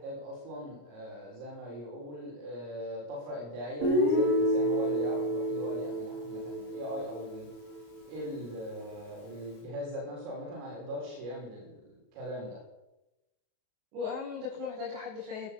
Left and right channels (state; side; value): late; left; 33 ms